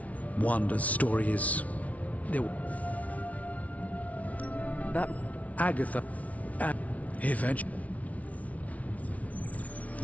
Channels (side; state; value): right; late; 0.068 ms